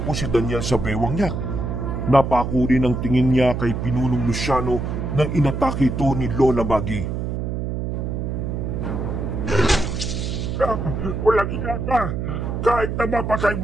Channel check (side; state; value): right; noise; hum, 3 dB below the sound